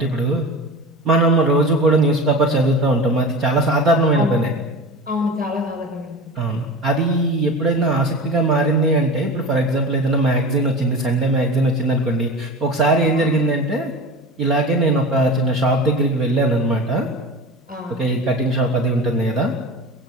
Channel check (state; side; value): normal; both; correlation 0.32